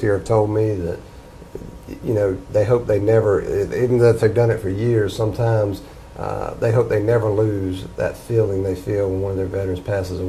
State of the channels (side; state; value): both; identical; correlation 1.00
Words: have told me that, you know, they hope they never, even though if they've done it for years, sometimes they hope they never lose that feeling they feel when one of their veterans passes